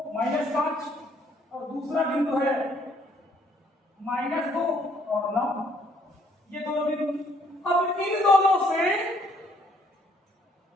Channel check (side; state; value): both; normal; correlation 0.66